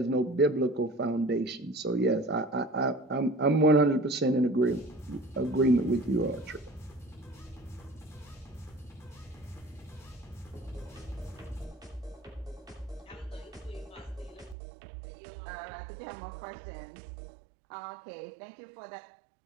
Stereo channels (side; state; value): left; drops out; at 14.6 s